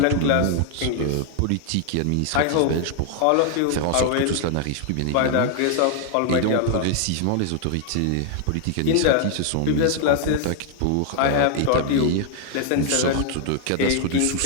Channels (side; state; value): both; different; correlation 0.00